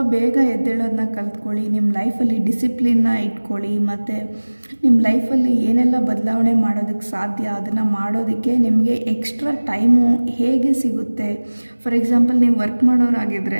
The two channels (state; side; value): inverted; both; correlation -1.00